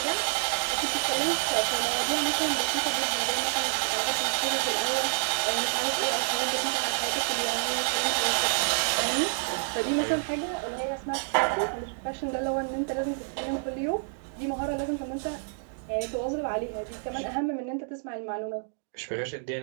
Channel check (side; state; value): left; silent; digital silence